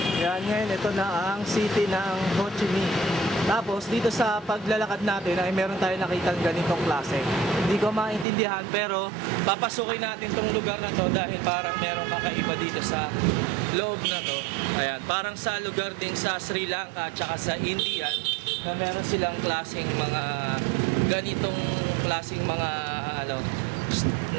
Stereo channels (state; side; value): drops out; left; at 8.2 s